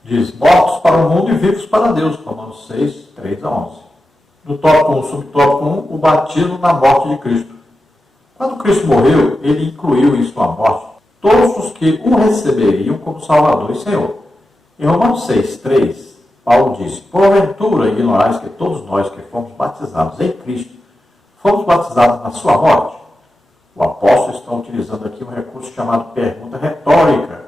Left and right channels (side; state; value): both; normal; correlation 0.91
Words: diz, mortos para o mundo e vivos para Deus, Romanos 6, 3 a 11. No tópico 1, subtópico 1, o batismo na morte de Cristo. Quando Cristo morreu, ele incluiu em sua morte todos os que o receberiam como Salvador e Senhor. Em Romanos 6, 3, Paulo diz, porventura ignorais que todos nós que fomos batizados em Cristo, fomos batizados na sua morte? O apóstolo está utilizando aqui um recurso chamado pergunta retórica,